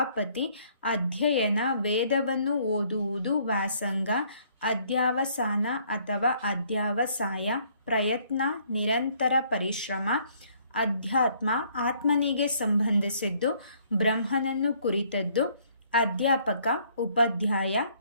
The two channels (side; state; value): both; inverted; correlation -0.64